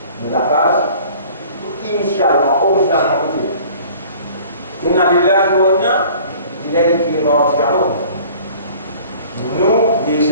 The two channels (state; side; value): inverted; both; correlation -0.49